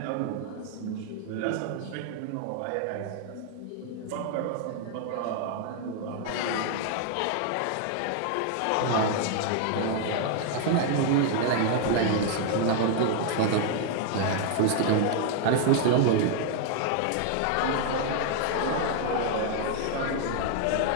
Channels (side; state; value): both; different; correlation 0.00